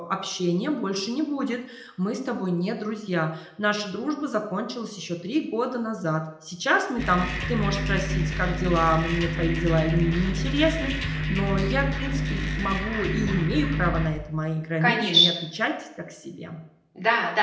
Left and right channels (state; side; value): identical; both; correlation 1.00